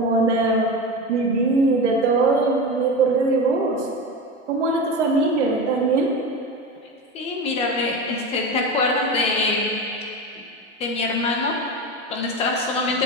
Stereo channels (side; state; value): both; normal; correlation 0.23